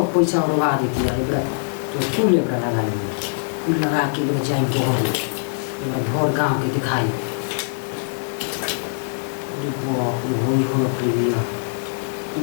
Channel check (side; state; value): right; silent; digital silence